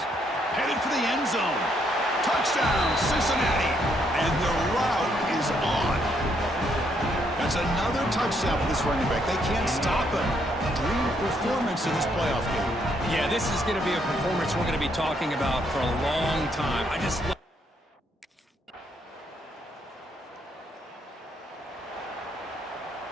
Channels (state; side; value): normal; both; correlation 0.73